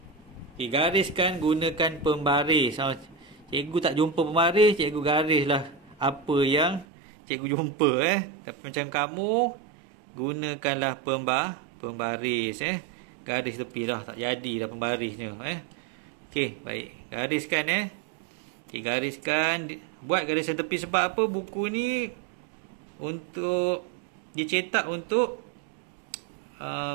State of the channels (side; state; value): left; drops out; at 6.9 s